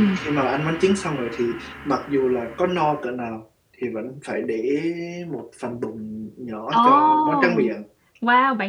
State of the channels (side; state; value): both; identical; correlation 1.00